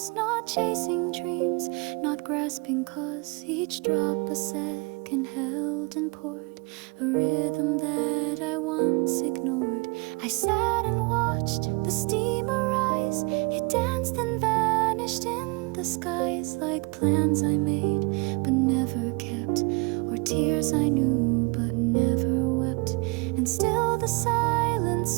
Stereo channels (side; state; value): left; quieter; 29.4 dB